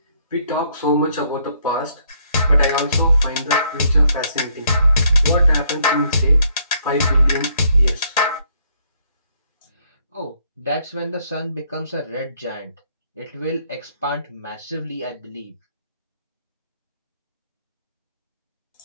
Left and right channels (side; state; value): both; inverted; correlation -0.69